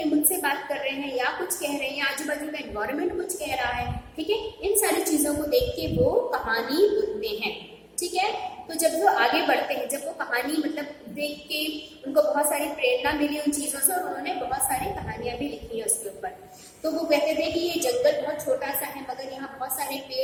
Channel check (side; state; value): both; identical; correlation 1.00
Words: मुझसे बात कर रहे हैं, या कुछ कह रहे हैं, या आजू बाजू का एनवायरमेंट कुछ कह रहा है, ठीक है। इन सारी चीजों को देख के वो कहानी बुनते हैं, ठीक है। तो जब वो आगे बढ़ते हैं, जब वो कहानी मतलब देख के उनको बहुत सारी प्रेरणा मिली उन चीजों से, और उन्होंने बहुत सारी कहानियां भी लिखी है उसके ऊपर। तो वो कहते थे कि ये जंगल बहुत छोटा सा है, मगर यहाँ बहुत सारे